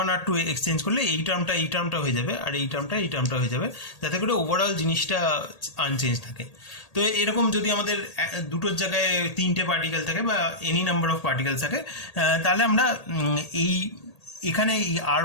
R2 এক্সচেঞ্জ করলে এই টার্মটা হয়ে যাবে, আর এই টার্মটা হয়ে যাবে, যাতে করে ওভারঅল জিনিসটা আনচেঞ্জ থাকে। তো এরকম যদি আমাদের দুটোর জায়গায় 3টে পার্টিকেল থাকে বা এনি নাম্বার অফ পার্টিকেলস থাকে তাহলে আমরা এই এখানে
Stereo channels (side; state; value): right; late; 1.8 ms